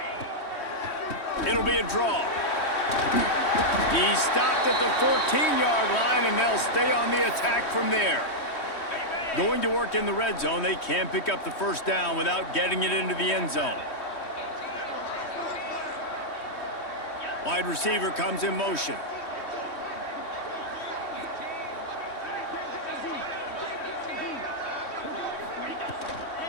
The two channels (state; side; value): late; right; 3.1 ms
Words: It'll be a draw. He stopped at the 14-yard line, and they'll stay on the attack from there. Going to work in the red zone, they can't pick up the first down without getting it into the end zone. Wide receiver comes in motion.